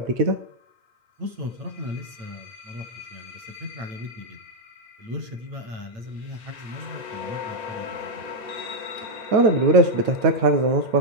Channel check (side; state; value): left; late; 8.8 ms